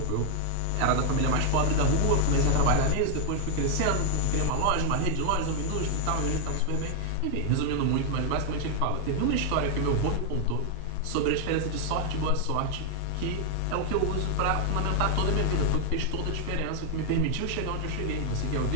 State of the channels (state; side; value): different; both; correlation 0.00